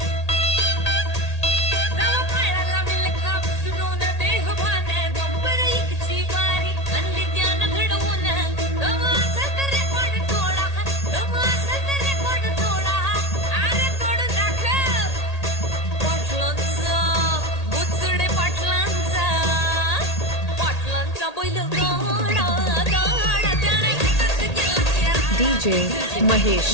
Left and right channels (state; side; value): late; right; 1.8 ms